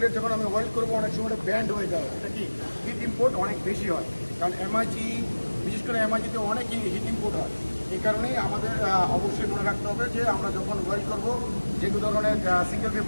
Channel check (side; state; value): both; inverted; correlation -1.00